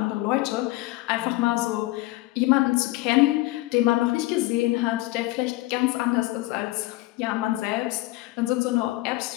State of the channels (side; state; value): right; quieter; 19.4 dB